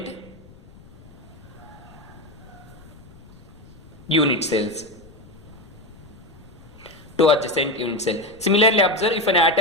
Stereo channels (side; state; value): left; noise; rumble, 22 dB below the sound